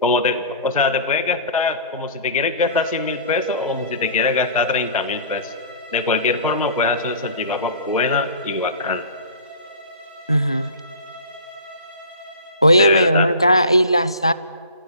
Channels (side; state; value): both; inverted; correlation -0.41